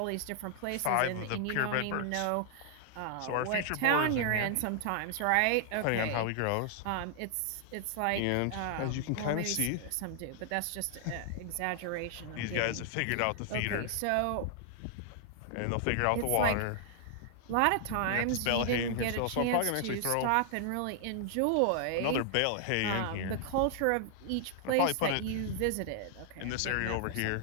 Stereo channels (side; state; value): both; different; correlation -0.01